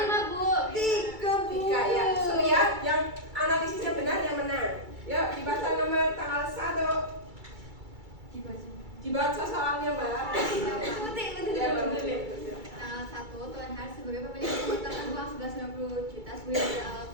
5 Bu. 3 ya. So ya, yang analisisnya benar yang menang. Yuk dibaca nomor tanggal 1. Dibaca salamnya Mbak. Ya, Mbak Muti. Tanggal 1, Tuan Har sebagai pemilik mengumpulkan uang 1190 juta sebagai modal awal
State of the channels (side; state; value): left; late; 2.3 ms